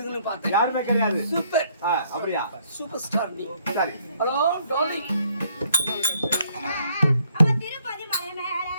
பார்த்தேன். யாருமே கிடையாது. சூப்பர். அப்படியா? சூப்பர் ஸ்டார் நீ. சரி. Hello darling.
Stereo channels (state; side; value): inverted; both; correlation -0.67